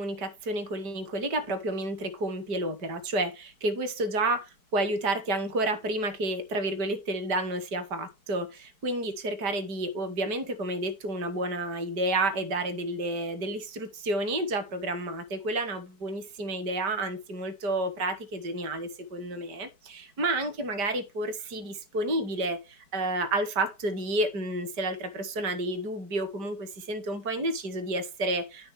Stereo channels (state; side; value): late; left; 4.6 ms